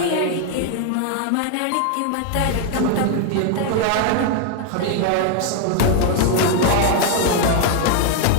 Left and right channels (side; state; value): both; different; correlation 0.00